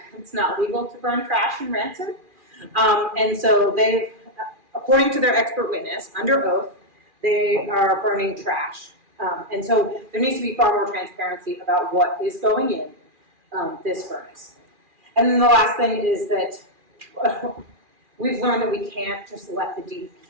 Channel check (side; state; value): left; late; 2.4 ms